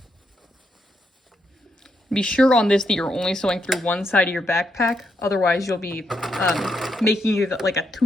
Be sure on this that you're only sewing through one side of your backpack. Otherwise, you'll be making it like a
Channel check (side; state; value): both; normal; correlation 0.80